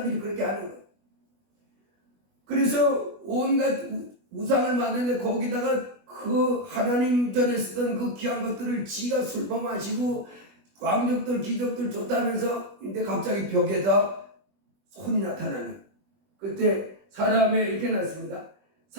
그렇게 하는 거예요. 그래서 온갖 우상을 만드는데 거기다가 그 하나님 전에 쓰던 그 귀한 것들을 지가 술만 마시고 왕족들 귀족들 좋다면서 근데 갑자기 벽에다 손이 나타나는 그때 사람의 이렇게 났습니다.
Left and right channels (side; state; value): left; late; 20 ms